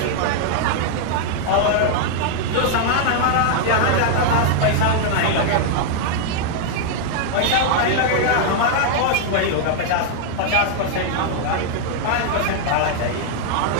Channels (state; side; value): different; both; correlation 0.00